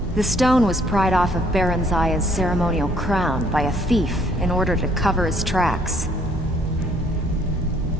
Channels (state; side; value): normal; both; correlation 0.64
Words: The stone was pried off of Baron Zaya's ceremonial crown by a thief in order to cover his tracks.